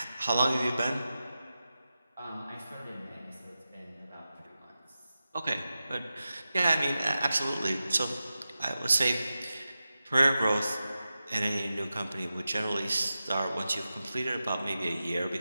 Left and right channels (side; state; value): both; inverted; correlation -0.93